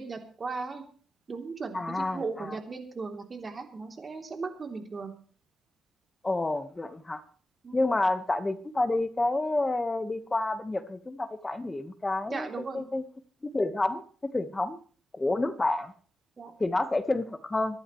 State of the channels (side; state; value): both; normal; correlation 0.95